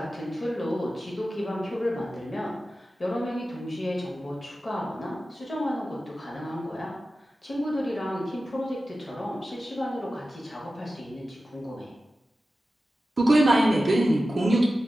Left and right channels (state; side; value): normal; both; correlation 0.94